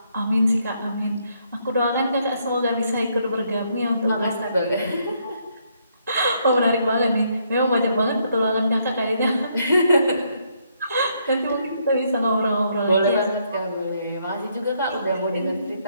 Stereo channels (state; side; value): inverted; both; correlation -0.73